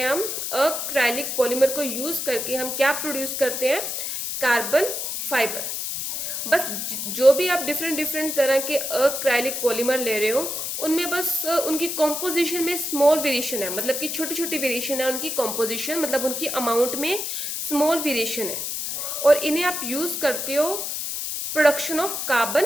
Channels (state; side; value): noise; left; hiss, 3 dB below the sound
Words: हम, अक्राइलिक पॉलीमर को यूज़ करके हम क्या प्रोड्यूस करते हैं, कार्बन फाइबर। बस जो भी आप डिफरेंट डिफरेंट तरह के अक्राइलिक पॉलीमर ले रहे हो उनमें बस उनकी कॉम्पोजिशन में स्मॉल वेरिएशन है, मतलब कि छोटी छोटी वेरिएशन है उनकी कॉम्पोजिशन, मतलब उनकी अमाउंट में स्मॉल वेरिएशन है, और इन्हें आप यूज़ करते हो production of